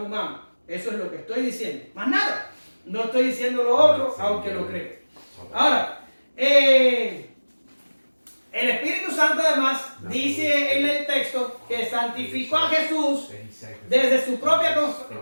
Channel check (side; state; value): both; inverted; correlation -1.00